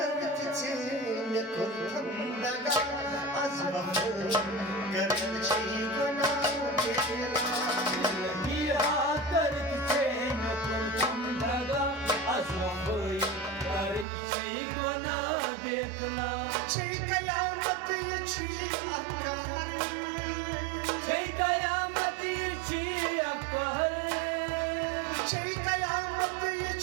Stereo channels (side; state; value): left; drops out; at 14.1 s